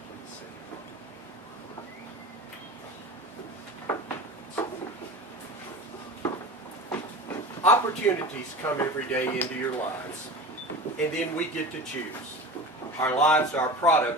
Please see. Opportunities come every day into your lives, and then we get to choose. Our lives are a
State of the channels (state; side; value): normal; both; correlation 0.32